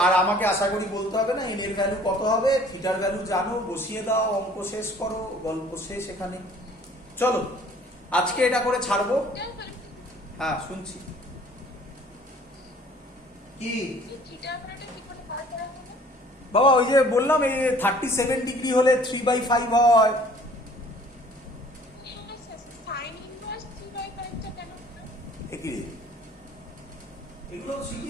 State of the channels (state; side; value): normal; both; correlation 0.53